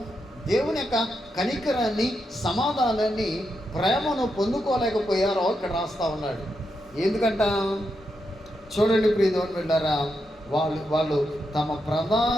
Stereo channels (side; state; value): both; normal; correlation 0.84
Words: దేవుని యొక్క కనికరాన్ని, సమాధానాన్ని, ప్రేమను పొందుకోలేకపోయారో ఇక్కడ రాస్తా ఉన్నాడు. ఎందుకంట? చూడండి ప్రియదేవుని బిడ్డలారా, వాళ్ళు తమ